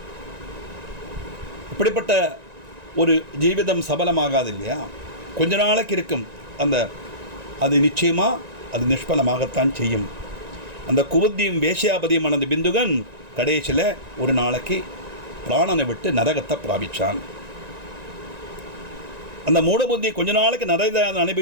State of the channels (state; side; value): late; left; 1.9 ms